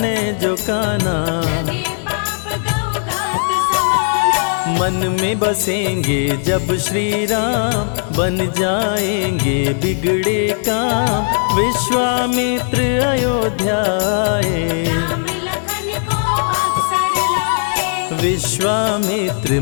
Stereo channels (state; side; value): silent; right; digital silence